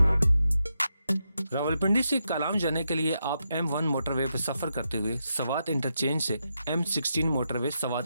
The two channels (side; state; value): both; inverted; correlation -0.84